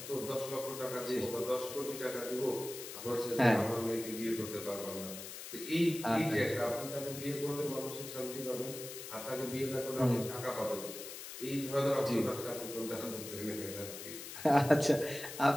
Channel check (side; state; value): left; noise; hiss, 10 dB below the sound